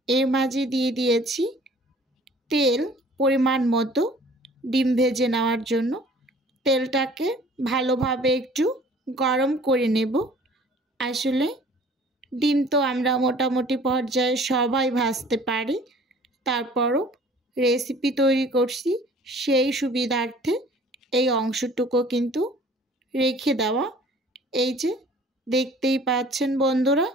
এর মাঝে দিয়ে দিয়েছি তেল পরিমাণ মতো ডিম ভেজে নেওয়ার জন্য। তেলটাকে ভালোভাবে একটু গরম করে নেব। আসলে ডিম তো আমরা মোটামুটি পর্যায়ে সবাই ভাজতে পারি, তারপরও রেসিপি তৈরি করছি সেই সুবিধার্থে এই অংশটুকু কিন্তু রেখে দেওয়া। এই যে দেখতেই পাচ্ছেন বন্ধুরা,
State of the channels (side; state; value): both; normal; correlation 0.51